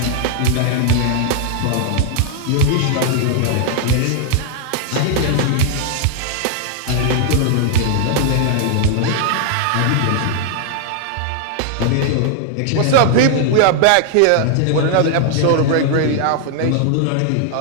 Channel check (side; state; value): both; different; correlation 0.00